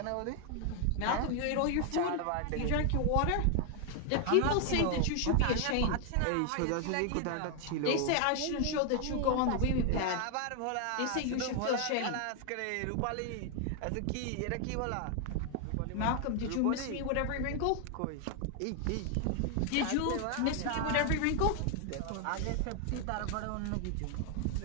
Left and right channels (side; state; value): both; different; correlation 0.00